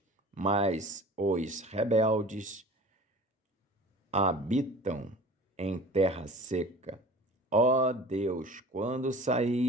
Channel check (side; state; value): both; normal; correlation 0.41